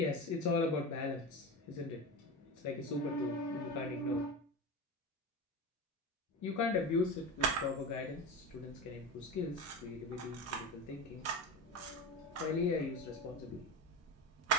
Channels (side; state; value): both; normal; correlation 0.24